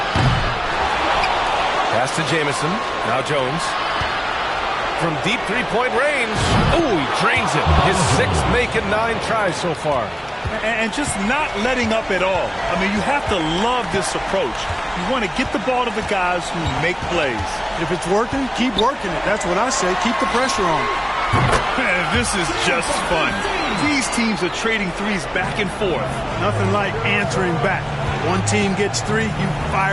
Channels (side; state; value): both; identical; correlation 1.00